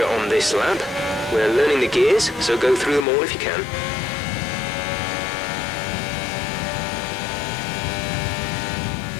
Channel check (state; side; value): drops out; right; at 3.1 s